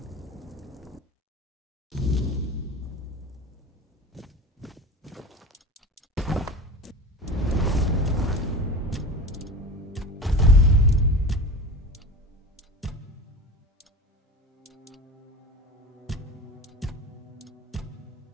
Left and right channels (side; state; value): both; normal; correlation 0.32